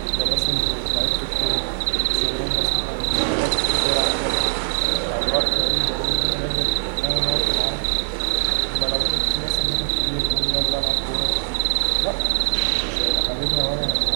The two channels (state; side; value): silent; left; digital silence